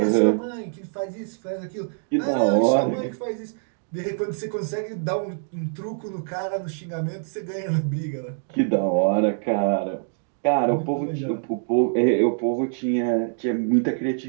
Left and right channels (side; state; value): left; silent; digital silence